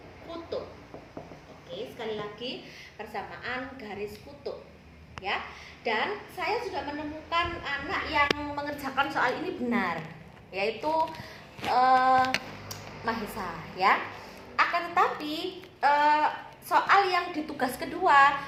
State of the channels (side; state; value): both; identical; correlation 1.00